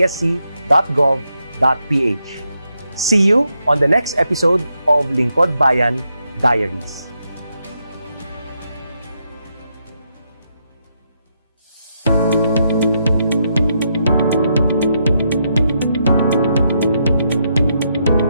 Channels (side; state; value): both; inverted; correlation -0.81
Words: See you on the next episode of Lingkod Bayan Diaries.